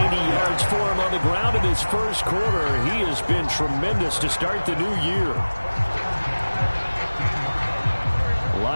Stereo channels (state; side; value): inverted; both; correlation -1.00